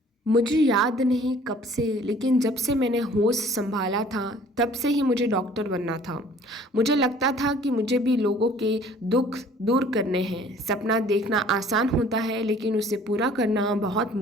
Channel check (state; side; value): normal; both; correlation 0.53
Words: मुझे याद नहीं कब से, लेकिन जब से मैंने होश संभाला था तब से ही मुझे डॉक्टर बनना था। मुझे लगता था कि मुझे भी लोगों के दुख दूर करने हैं। सपना देखना आसान होता है, लेकिन उसे पूरा करना बहुत